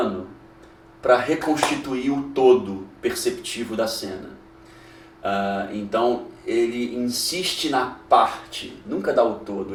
para reconstituir o todo perceptivo da cena. Então, ele insiste na parte, nunca dá o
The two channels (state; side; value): identical; both; correlation 1.00